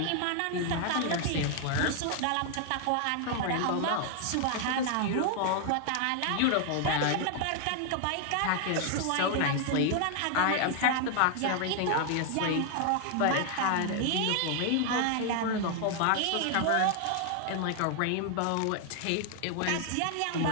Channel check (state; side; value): different; both; correlation 0.00